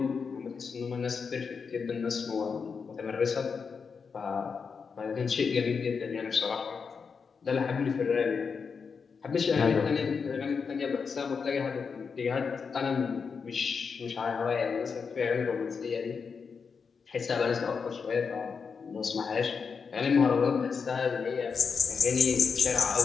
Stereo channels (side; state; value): right; quieter; 5.6 dB